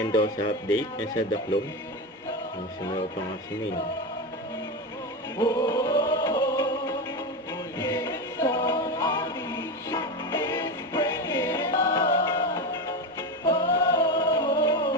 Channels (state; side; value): normal; both; correlation 0.18